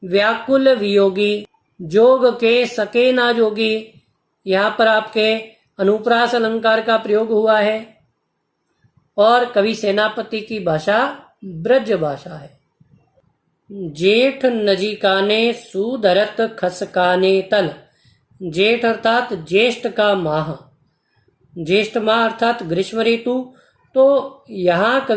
व्याकुल वियोगी, जोग के सके ना जोगी, यहाँ पर आपके अनुप्रास अलंकार का प्रयोग हुआ है। और कवि सेनापति की भाषा ब्रज भाषा है। जेठ नजीकाने सुधरत खसकाने तल। जेठ अर्थात ज्येष्ठ का माह, ज्येष्ठ माह अर्थात ग्रीष्म ऋतु। तो यहाँ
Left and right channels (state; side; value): identical; both; correlation 1.00